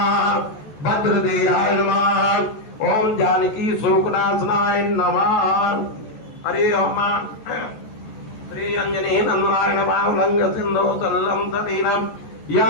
भद्रदेहाय नमः ओम जानकी शोकनाशनाय नमः। हरे ओम श्री अंजनी नंदनाय नमः उल्लंघ सिंधु सल्लं सतीनं या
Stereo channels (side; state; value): right; late; 14 ms